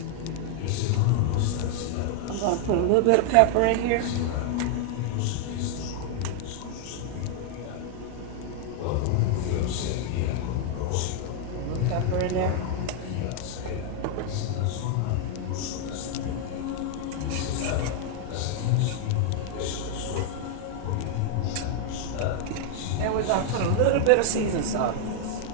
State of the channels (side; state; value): both; different; correlation 0.00